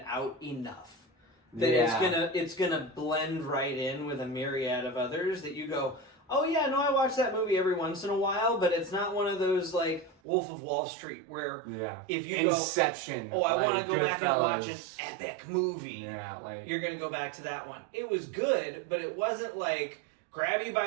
out enough. That it's gonna blend right in with a myriad of others that you go, oh yeah, no, I watch that movie every once in a while, but it's not one of those like Wolf of Wall Street where if you Inception. I want to go back and watch an epic movie. Yeah, like you're gonna go back to that one. It was good, but it wasn't like grab you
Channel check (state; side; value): drops out; left; at 10.2 s